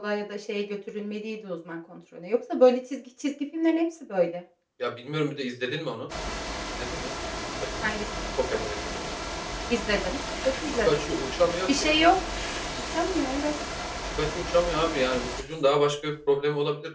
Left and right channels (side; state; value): both; identical; correlation 1.00